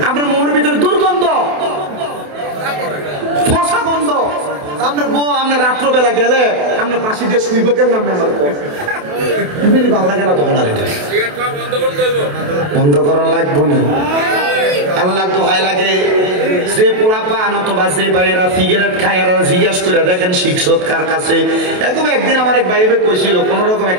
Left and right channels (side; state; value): left; late; 28 ms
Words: আপনার মুখের ভিতরে দুর্গন্ধ, ফসা গন্ধ। আপনার বউ আপনার রাত্রবেলা গেলে আপনার পাশে দিয়ে শুইব কেমন? আপনি আমার ভালো লাগে না তখন। আর এটা বন্ধ করার লাগবো না। আল্লাহ দোহাই লাগে, যে পোলা পান অথবা যে ভাইয়েরা সিগারেট খায় এরা জিজ্ঞাসা করে দেখেন শিক্ষক কার কাছে। এরকম একদিন আমার এক ভাইবে কইছিল, কোন রকম